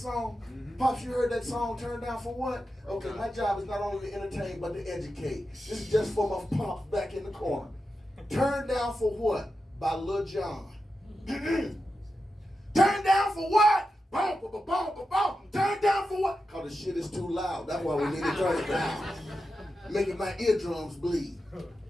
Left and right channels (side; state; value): both; normal; correlation 0.90